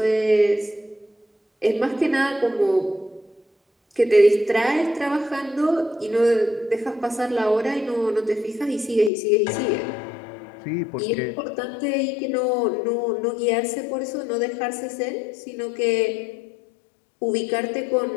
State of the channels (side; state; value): right; drops out; at 9.1 s